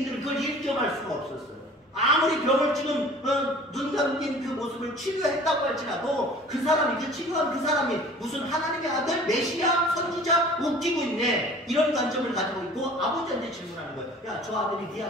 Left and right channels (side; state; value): both; normal; correlation 0.46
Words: 그걸 인정할 수가 없었어요. 아무리 병을 지금 눈 감긴 그 모습을 치료했다고 할지라도 그 사람이, 그 치료한 그 사람이 무슨 하나님의 아들, 메시아, 선지자 웃기고 있네, 이런 관점을 가지고 있고 아버지한테 질문하는 거예요. 야, 저 아들이 네